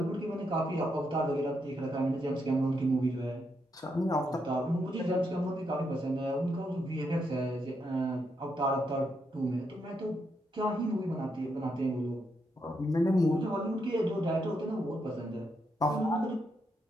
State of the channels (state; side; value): normal; both; correlation 0.80